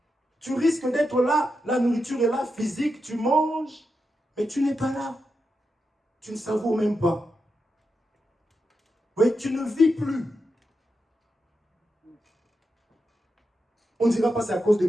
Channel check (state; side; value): normal; both; correlation 0.87